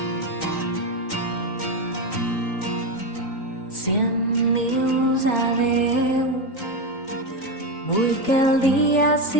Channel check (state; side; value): late; right; 3.9 ms